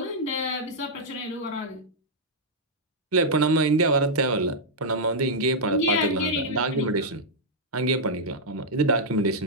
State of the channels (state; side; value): normal; both; correlation -0.06